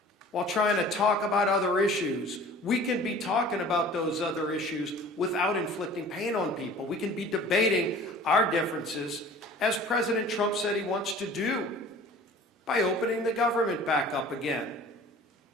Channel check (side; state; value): both; normal; correlation 0.45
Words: While trying to talk about other issues, we can be talking about those other issues without inflicting pain on people. We can be debating our differences, as President Trump said he wants to do, by opening the government back up again.